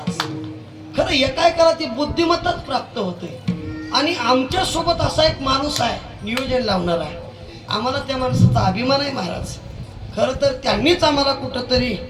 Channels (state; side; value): identical; both; correlation 1.00